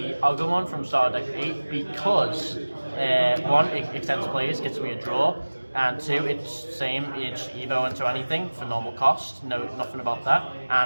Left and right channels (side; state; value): both; inverted; correlation -1.00